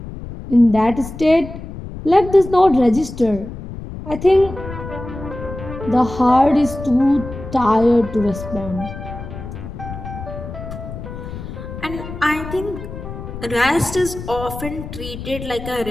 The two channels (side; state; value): left; noise; rumble, 10 dB below the sound